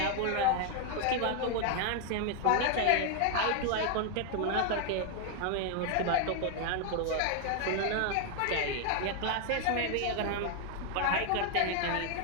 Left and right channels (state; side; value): different; both; correlation 0.00